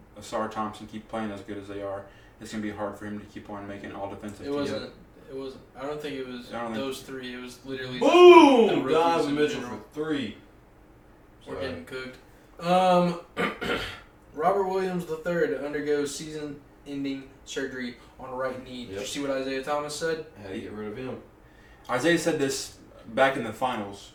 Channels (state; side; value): identical; both; correlation 1.00